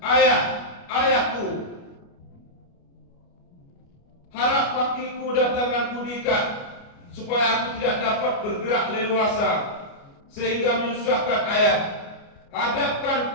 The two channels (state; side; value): late; right; 29 ms